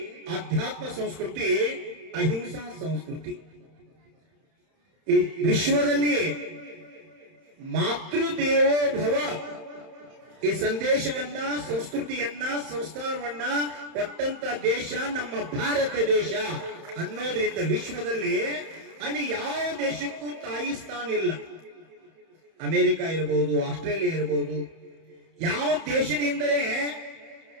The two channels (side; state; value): left; late; 31 ms